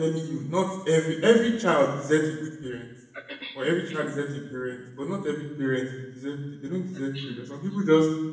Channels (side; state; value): both; identical; correlation 1.00